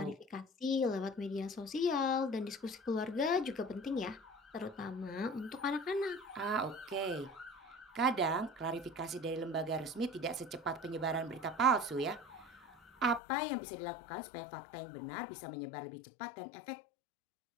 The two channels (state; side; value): drops out; right; at 13.2 s